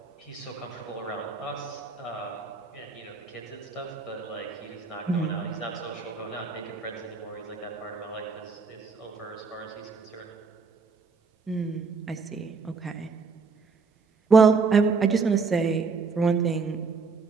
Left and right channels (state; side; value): quieter; left; 4.8 dB